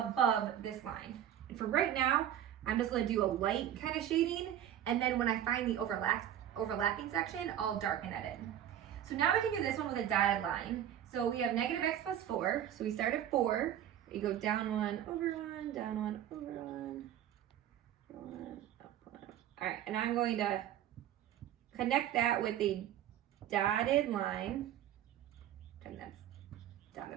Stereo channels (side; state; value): left; quieter; 11.0 dB